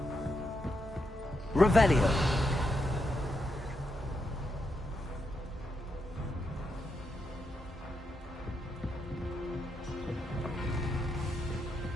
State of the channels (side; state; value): both; normal; correlation 0.83